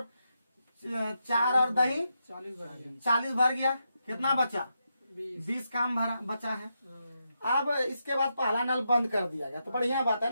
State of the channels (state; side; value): inverted; both; correlation -0.84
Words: और दही 40 भर गया, 40 भर गया, कितना बचा 20, 20 काम भरा बचा है। अब इसके बाद पहला नल बंद कर दिया गया, तो बढ़िया बात